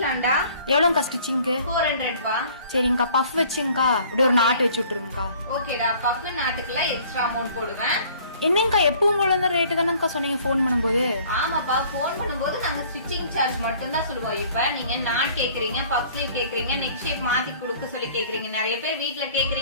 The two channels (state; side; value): inverted; both; correlation -0.53